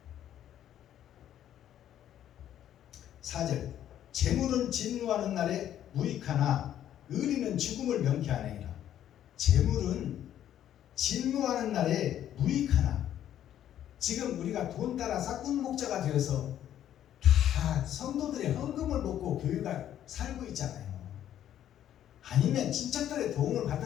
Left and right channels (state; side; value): quieter; right; 11.0 dB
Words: 4절 재물은 진노하는 날에 무익하나 의리는 죽음을 명쾌하느니라. 재물은 진노하는 날에 무익하나. 지금 우리가 돈 따라 싹군 목자가 되어서 다 성도들의 헌금을 먹고 교회가 살고 있잖아요. 아니면 친척들의 도움을